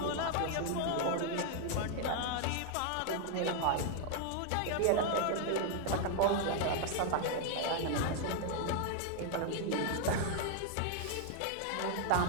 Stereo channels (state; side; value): different; both; correlation 0.00